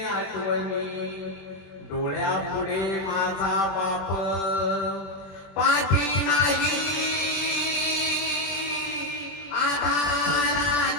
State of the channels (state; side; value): late; right; 21 ms